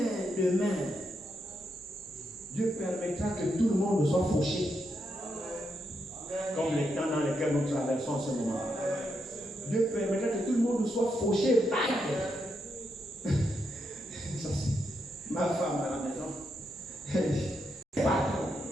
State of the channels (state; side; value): normal; both; correlation 0.82